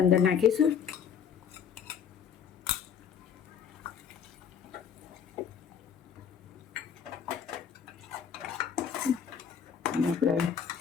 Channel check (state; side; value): quieter; right; 7.6 dB